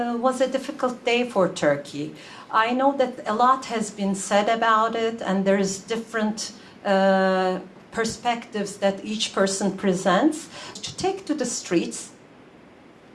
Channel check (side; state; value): both; identical; correlation 1.00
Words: was a difficult day for Turkey. I know that a lot has been said about it, and there's different perspectives that each person presents. To take to the streets,